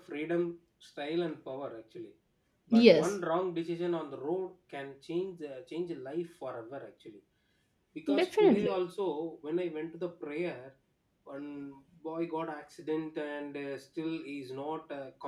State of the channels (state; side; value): identical; both; correlation 1.00